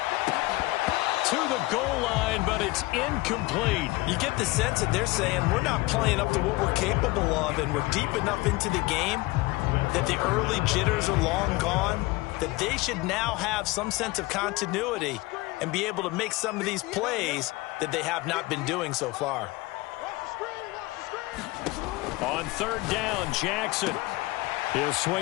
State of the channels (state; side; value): quieter; right; 21.3 dB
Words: To the goal line, but it's incomplete. You get the sense that they're saying we're not playing up to what we're capable of, and we're deep enough into the game that the early jitters are long gone, that they should now have some sense of continuity and be able to make some of these plays that they have not been doing so far. On 3rd down, Jackson. He'll